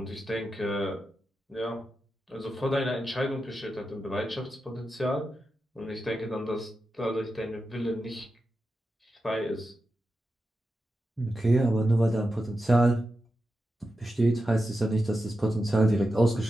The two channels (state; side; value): normal; both; correlation 0.90